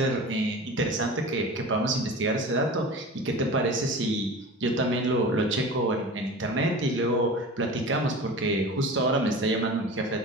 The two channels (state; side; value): normal; both; correlation 0.34